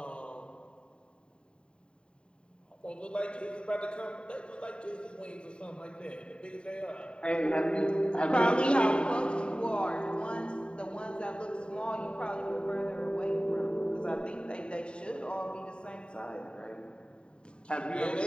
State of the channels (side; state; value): right; late; 0.052 ms